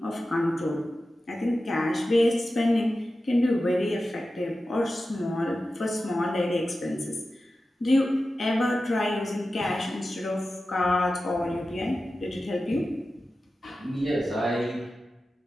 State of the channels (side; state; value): both; normal; correlation 0.93